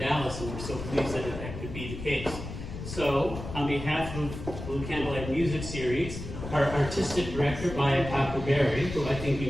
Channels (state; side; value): noise; left; rumble, 9 dB below the sound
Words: and we're so pleased that that could be the case. So, on behalf of Blue Candlelight Music Series, our artistic director, Maya Takuberry, who I think